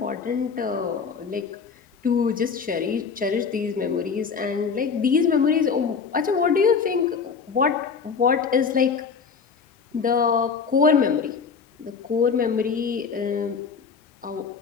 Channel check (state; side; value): quieter; right; 5.7 dB